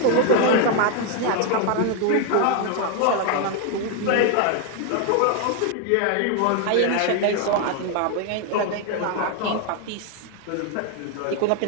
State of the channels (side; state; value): both; different; correlation 0.01